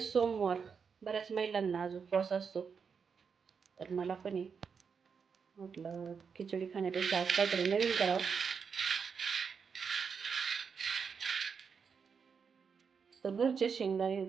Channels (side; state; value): left; quieter; 6.1 dB